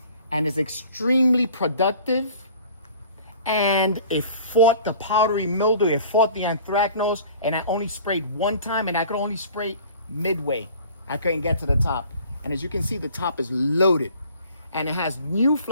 and is extremely productive. And it fought the powdery mildew, it fought the anthracnose, and I only sprayed one time, and I could only spray midway. I couldn't get to the top. And as you can see, the top is loaded. And it has new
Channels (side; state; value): both; inverted; correlation -0.48